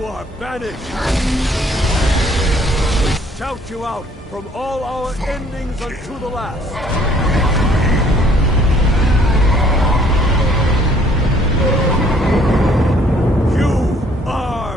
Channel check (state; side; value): normal; both; correlation 0.61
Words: are banished. We shout you out from all our endings unto the last. You